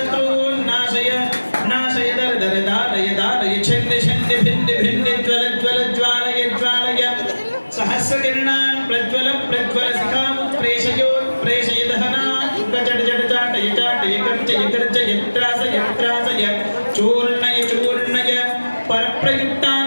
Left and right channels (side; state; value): both; inverted; correlation -1.00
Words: नाशय नाशय दर्दरदारय दारय छिन्द छिन्द भिन्द भिन्द ज्वल ज्वल ज्वालय ज्वालय सहस्रकिरणान् प्रज्वल प्रज्वल शिखामुत्प्रेषयोत्प्रेषय दहनात् जट जट चाटय चाटय गर्जय गर्जय त्रासय त्रासय चूर्णय चूर्णय